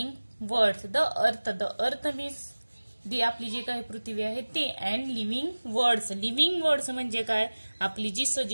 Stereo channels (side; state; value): both; inverted; correlation -1.00